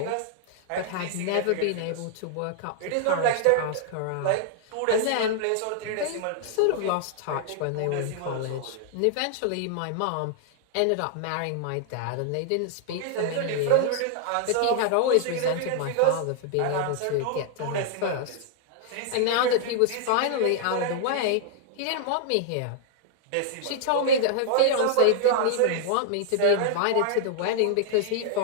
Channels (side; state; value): both; different; correlation -0.01